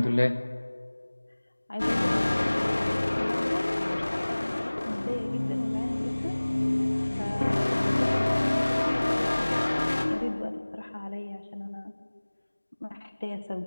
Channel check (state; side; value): inverted; both; correlation -1.00